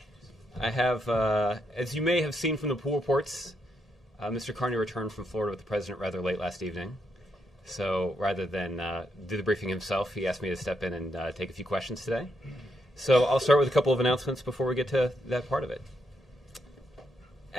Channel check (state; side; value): normal; both; correlation 0.79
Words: I have, as you may have seen from the pool reports, Mr. Carney returned from Florida with the president rather late last evening. So rather than do the briefing himself, he asked me to step in and take a few questions today. So I'll start with a couple of announcements before we get to that part of it.